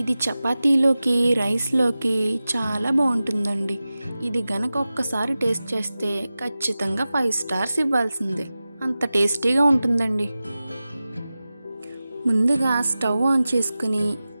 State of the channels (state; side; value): inverted; both; correlation -0.95